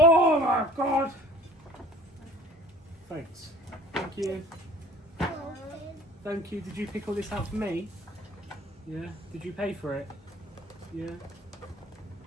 my God. Thanks. Thank you. Thank you. Did you pick all this out for me? Yeah. Did you pay for it? Yeah.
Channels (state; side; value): normal; both; correlation 0.48